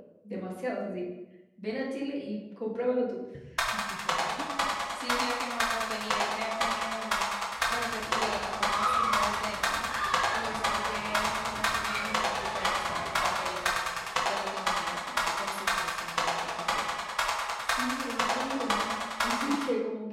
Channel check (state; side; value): identical; both; correlation 1.00